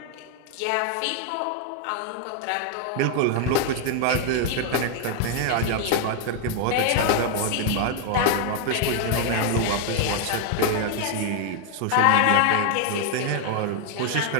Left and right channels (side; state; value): both; different; correlation 0.00